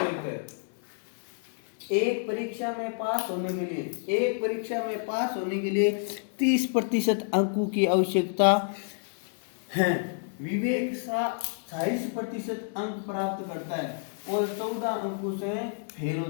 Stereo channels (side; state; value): right; silent; 59 dB below the other